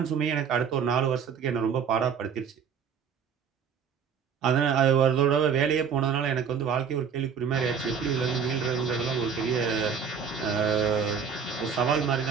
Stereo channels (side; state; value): left; quieter; 6.9 dB